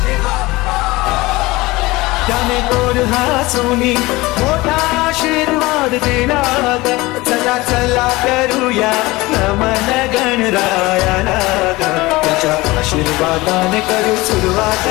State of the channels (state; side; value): quieter; right; 20.8 dB